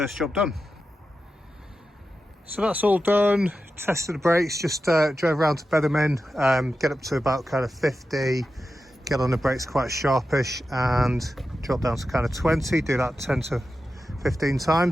job done. So that's all done. Tested the brakes, just drove around to bed them in, get up to about kind of 50, get on the brakes quite sharpish, and drop down to kind of 20, do that 10 to 15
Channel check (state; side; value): normal; both; correlation 0.91